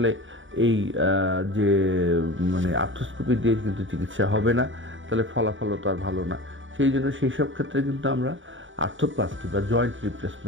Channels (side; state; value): left; late; 0.56 ms